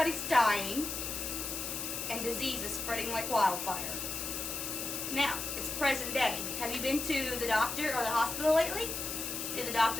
dying and disease is spreading like wildfire. Now, it's present day. Have you been to the doctor or the hospital lately? Did the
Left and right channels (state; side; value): noise; left; hiss, 4 dB below the sound